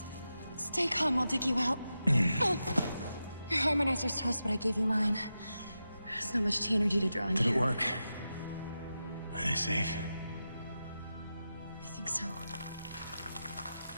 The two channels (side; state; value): both; inverted; correlation -0.90